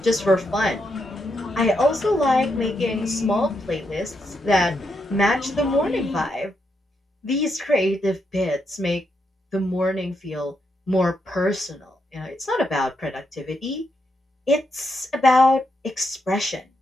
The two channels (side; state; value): both; normal; correlation 0.81